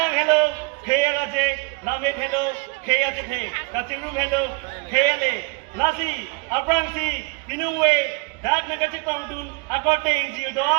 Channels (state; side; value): quieter; left; 30.6 dB